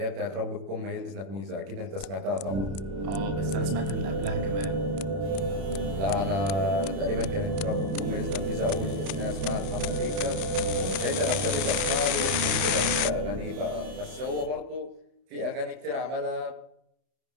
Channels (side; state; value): left; late; 31 ms